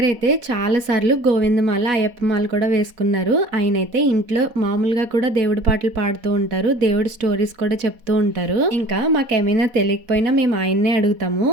అయితే చాలా సార్లు గోవిందమాల అయ్యప్పమాల కూడా వేసుకున్నారు. ఆయన అయితే ఇంట్లో మామూలుగా కూడా దేవుడి పాటలు పాడుతూ ఉంటారు, దేవుడి స్టోరీస్ కూడా చెప్తూ ఉంటారు. ఇంకా మాకేమైనా తెలియకపోయినా మేము ఆయన్నే అడుగుతాము.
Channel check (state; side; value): late; left; 4.1 ms